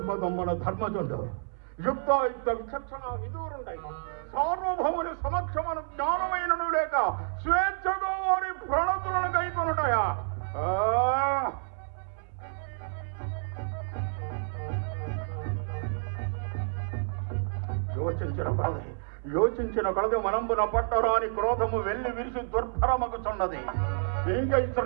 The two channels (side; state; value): left; silent; 58 dB below the other